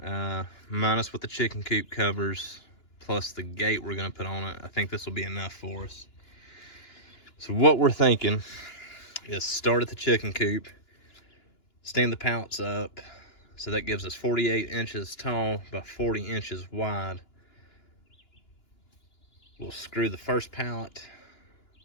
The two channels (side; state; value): right; late; 2.9 ms